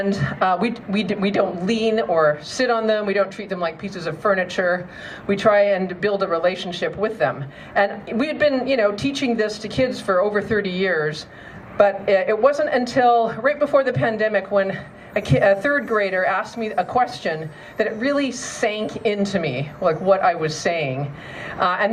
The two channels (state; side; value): identical; both; correlation 1.00